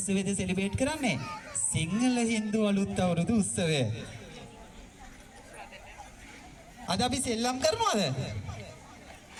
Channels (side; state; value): both; identical; correlation 1.00